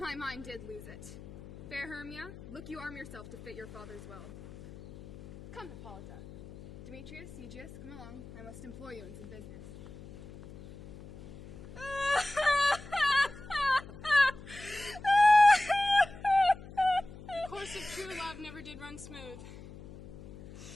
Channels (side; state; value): left; noise; hum, 16 dB below the sound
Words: mind did lose it. Fair Hermia, look you arm yourself to fit your father's will. Come, Hippolyta. Demetrius, Aegeus, come along. I must employ you in some business. The course of true love never did run smooth.